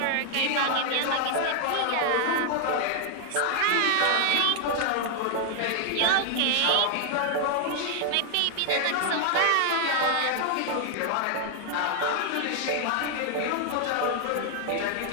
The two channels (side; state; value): both; different; correlation 0.00